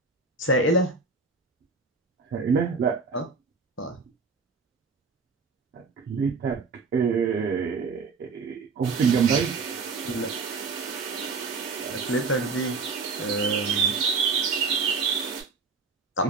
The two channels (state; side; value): quieter; left; 4.4 dB